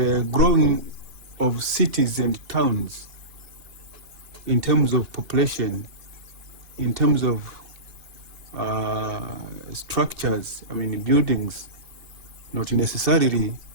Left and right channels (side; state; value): left; late; 2.7 ms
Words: growing of cities and towns in terms of population, in terms of structures, I mean buildings, not necessarily